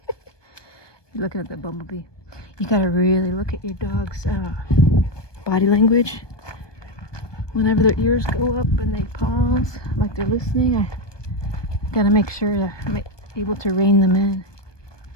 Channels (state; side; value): late; right; 1.2 ms